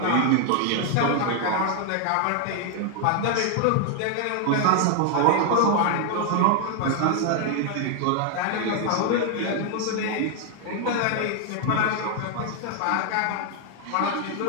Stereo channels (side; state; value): both; different; correlation 0.00